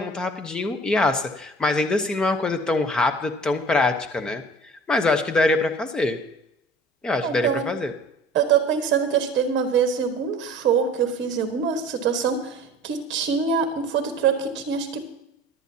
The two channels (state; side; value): normal; both; correlation 0.45